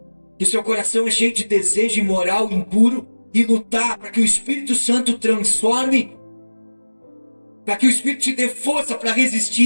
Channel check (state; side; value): inverted; both; correlation -1.00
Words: que o seu coração é cheio de desejo imoral, impuro, e lutar para que o Espírito Santo transforme, para que o Espírito te dê força para